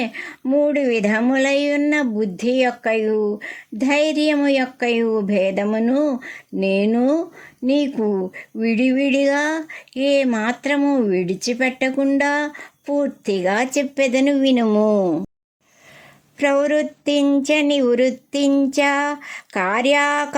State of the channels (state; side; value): identical; both; correlation 1.00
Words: 3 విధములైయున్న బుద్ధి యొక్కయు ధైర్యము యొక్కయు భేదమును నేను నీకు విడివిడిగా ఏ మాత్రము విడిచిపెట్టకుండా పూర్తిగా చెప్పెదను వినుము. ప్రవృత్తించ నివృత్తించ